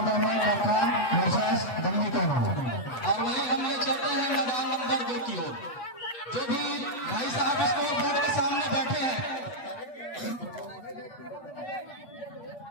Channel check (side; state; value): right; late; 8.2 ms